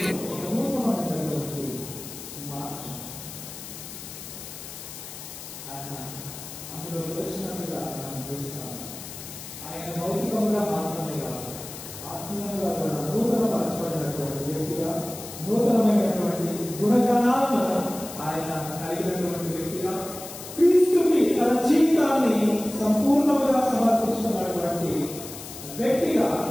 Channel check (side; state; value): left; noise; hiss, 12 dB below the sound